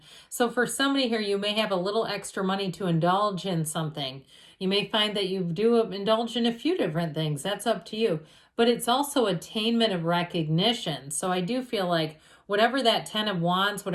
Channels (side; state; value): both; identical; correlation 1.00